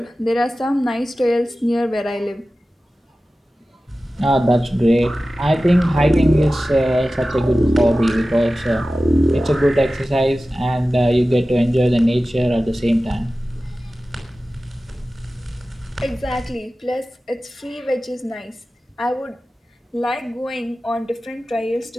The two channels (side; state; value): both; normal; correlation 0.95